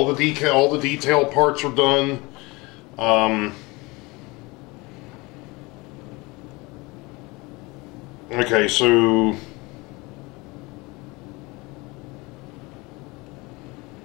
the detail parts are done. Okay, so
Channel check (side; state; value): right; quieter; 24.5 dB